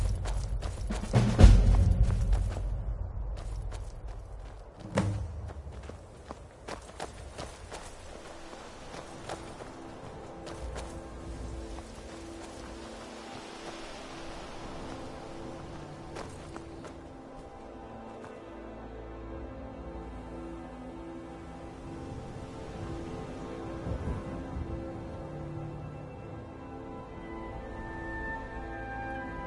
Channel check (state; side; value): identical; both; correlation 1.00